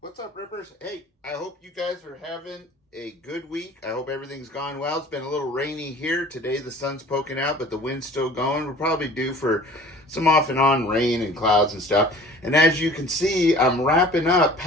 What's up, Rippers? Hey, I hope you guys are having a good week. I hope everything's gone well. It's been a little rainy here. Today the sun's poking out, but the wind's still going. We're probably due for some off and on rain and clouds and stuff. And as you can see, I'm wrapping up,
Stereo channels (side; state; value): both; normal; correlation 0.46